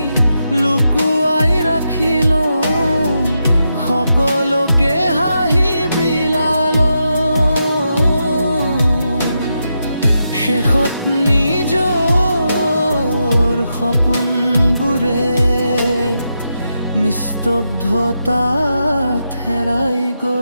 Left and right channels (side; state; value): both; inverted; correlation -0.85